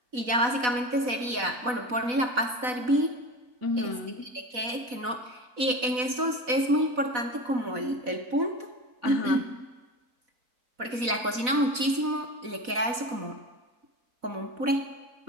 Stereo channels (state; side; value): late; left; 4.1 ms